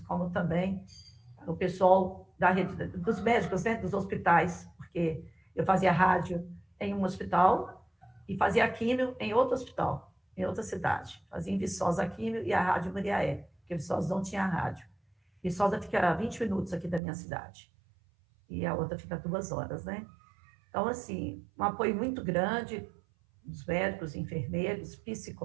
como também o pessoal da rede, dos médicos, né, dos hospitais, porque eu fazia rádio em um hospital e fazia químio em outro hospital, em outra cidade. Fazia em Viçosa a químio e a rádio Muriaé, porque Viçosa não tinha rádio. Viçosa fica a 20 minutos aqui da minha cidade. E a outra fica 2 horas, né? Então, assim, um apoio muito grande dos médicos, enfermeiros,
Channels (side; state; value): left; drops out; at 17.0 s